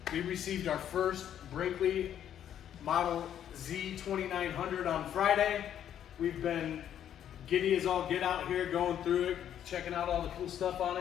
We received our first Brinkley Model Z2900 on Friday. We've been giddy as all get out here, going through it, checking out all the cool stuff on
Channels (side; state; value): right; quieter; 10.0 dB